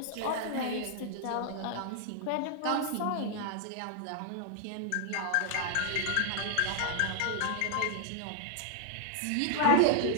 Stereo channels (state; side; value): different; both; correlation -0.01